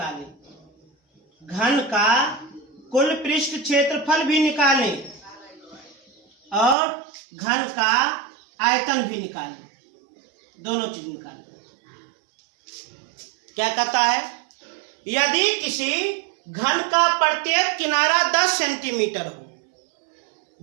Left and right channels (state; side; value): drops out; left; at 6.8 s